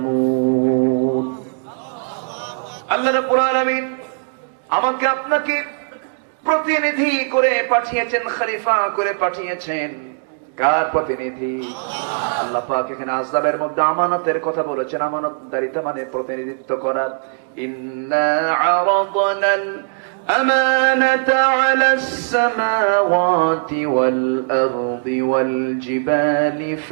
আল্লাহ রাব্বুল আলামিন আমাকে আপনাকে প্রতিনিধি করে পাঠিয়েছেন, খলিফা করে পাঠিয়েছেন। কার প্রতিনিধি? আল্লাহ পাক এখানে আযাবের মধ্যে আমানতের কথা বলেছেন। আমানতদারিতা মানে প্রতিনিধিত্ব করা। ইন্না আরাদনাল أمانة على السماوات والأرض والجبال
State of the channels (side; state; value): left; silent; digital silence